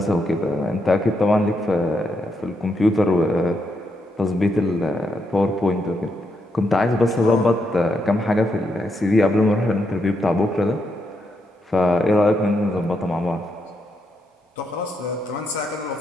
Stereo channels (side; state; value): both; normal; correlation 0.80